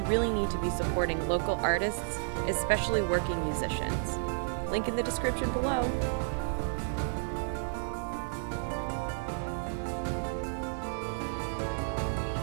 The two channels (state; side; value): silent; left; digital silence